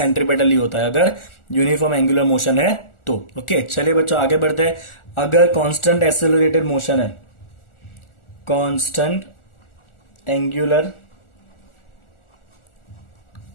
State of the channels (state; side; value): late; right; 1.4 ms